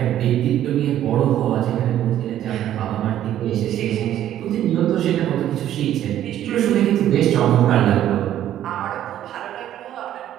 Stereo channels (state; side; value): quieter; left; 11.8 dB